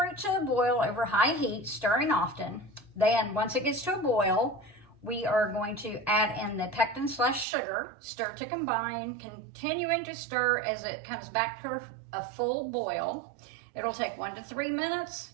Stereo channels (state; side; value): drops out; left; at 7.5 s